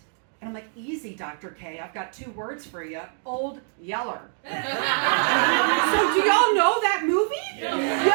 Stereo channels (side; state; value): left; silent; 61 dB below the other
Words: And I'm like, easy, Dr. K. I've got 2 words for you. Old Yeller. So do y'all know that movie?